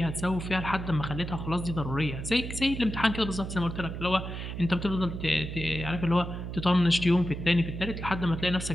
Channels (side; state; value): right; noise; hum, 7 dB below the sound